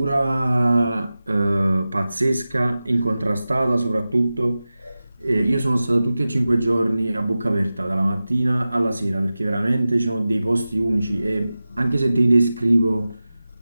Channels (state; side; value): inverted; both; correlation -0.95